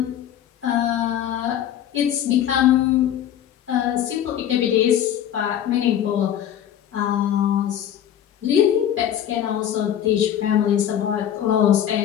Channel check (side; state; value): right; quieter; 10.4 dB